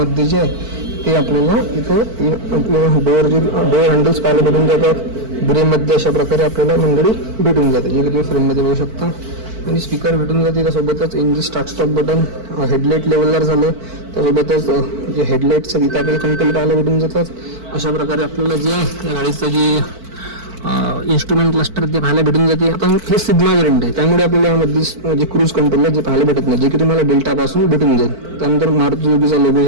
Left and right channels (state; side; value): late; left; 4.5 ms